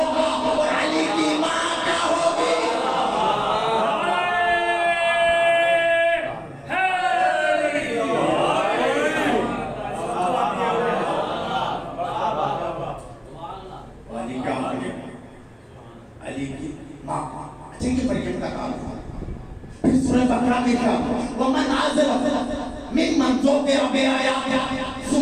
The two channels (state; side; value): identical; both; correlation 1.00